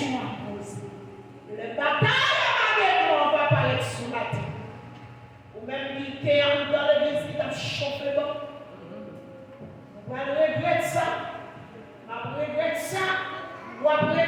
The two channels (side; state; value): both; identical; correlation 1.00